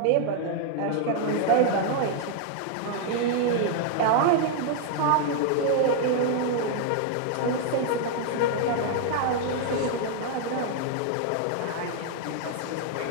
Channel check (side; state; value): both; different; correlation 0.00